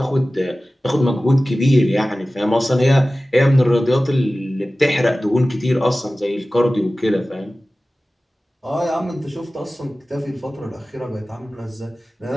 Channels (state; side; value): normal; both; correlation 0.96